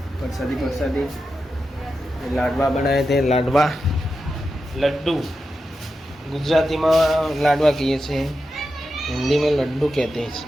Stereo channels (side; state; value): both; normal; correlation 0.89